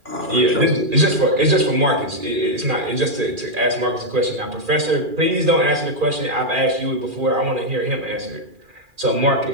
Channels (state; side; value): late; left; 2.4 ms